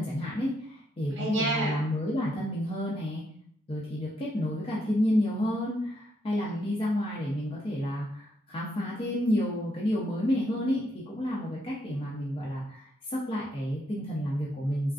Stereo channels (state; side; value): normal; both; correlation 0.77